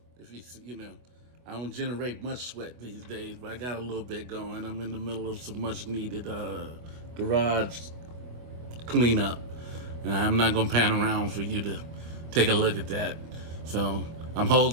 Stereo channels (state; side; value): late; left; 24 ms